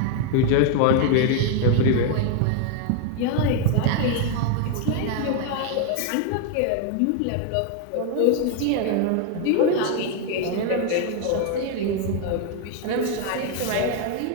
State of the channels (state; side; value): different; both; correlation 0.00